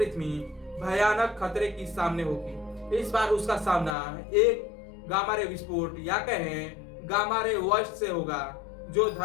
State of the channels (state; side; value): drops out; right; at 4.0 s